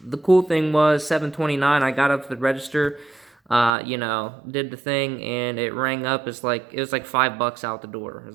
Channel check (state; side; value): drops out; left; at 3.7 s